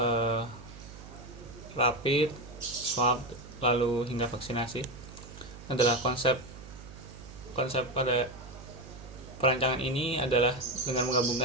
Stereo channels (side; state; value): right; noise; hum, 16 dB below the sound